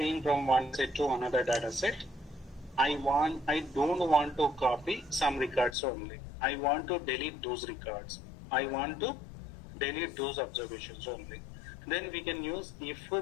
from one set to another data set, I don't want to copy some records only. I want to delete those records. I want to delete those observations only. Then we can use if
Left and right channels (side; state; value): right; drops out; at 5.8 s